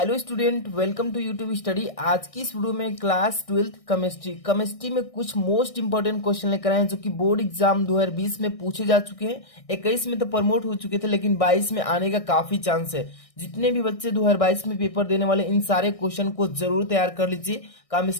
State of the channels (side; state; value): right; late; 1.6 ms